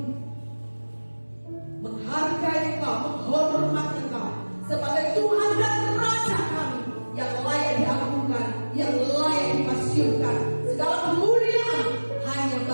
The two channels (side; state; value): both; inverted; correlation -1.00